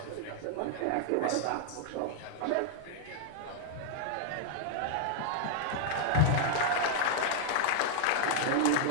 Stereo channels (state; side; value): different; both; correlation 0.00